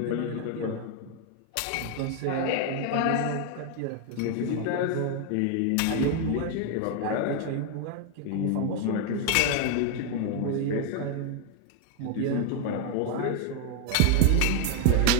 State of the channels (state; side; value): different; both; correlation 0.00